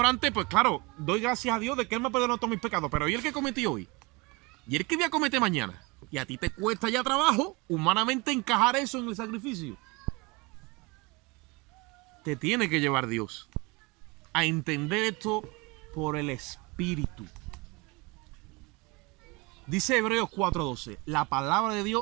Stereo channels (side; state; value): left; quieter; 26.3 dB